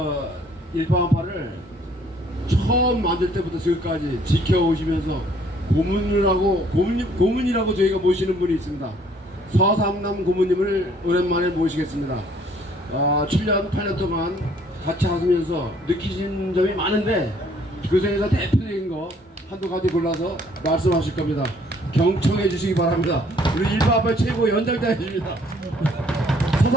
일파만파를 처음 만들 때부터 지금까지 지켜오시면서 고문이라고 저희가 모시는 분이 있습니다. 서삼남 고문님을 오랜만에 모시겠습니다. 7년, 8년 동안 같이 하시면서 느끼신 점이 많은데 그 중에서 대표적인 거 한두 가지 골라서 말씀하실 겁니다. 경청해 주시기 바랍니다. 우리 일파만파 최고 연장자이십니다.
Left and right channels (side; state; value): both; normal; correlation 0.61